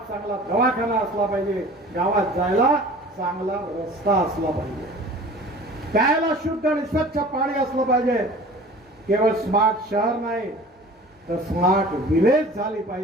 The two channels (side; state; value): both; normal; correlation 0.43